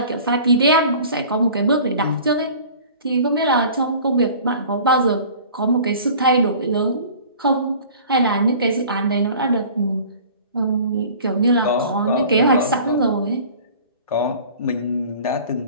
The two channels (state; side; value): inverted; both; correlation -0.45